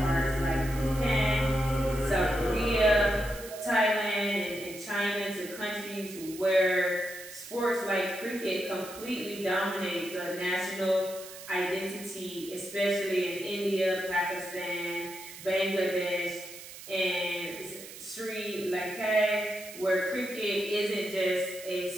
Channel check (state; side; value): noise; right; hiss, 14 dB below the sound